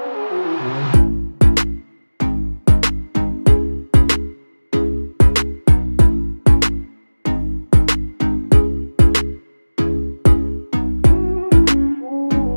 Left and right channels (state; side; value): inverted; both; correlation -1.00